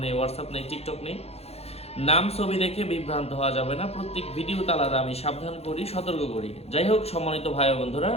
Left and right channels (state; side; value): late; right; 0.30 ms